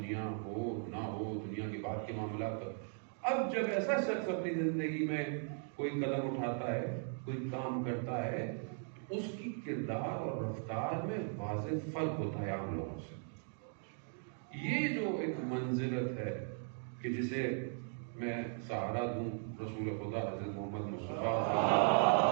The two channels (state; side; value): silent; left; 52 dB below the other